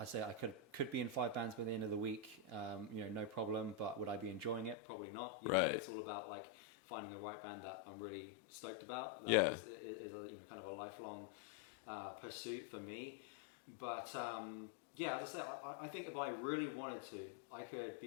say I could be in 5 bands by the end of the week, you know, no problem. But would I be enjoying it? Probably not. You know, it's all about like finding the right band that I'm really stoked about. That is a, you know, kind of a lifelong pursuit for me. But yeah, as I say, I think if I really wanted to, I could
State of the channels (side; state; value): right; drops out; at 4.8 s